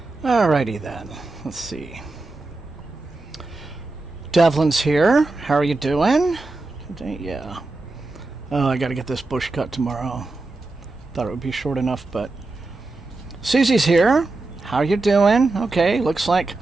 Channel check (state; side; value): quieter; left; 3.2 dB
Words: Alrighty then. Let's see. Devlin's here. How are you doing? Yeah. Oh, I gotta get this bush cut tomorrow. Thought it would be short enough, but... Susie's here. How you doing? Okay, looks like